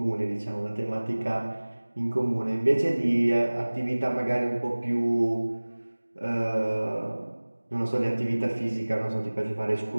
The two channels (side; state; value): both; inverted; correlation -1.00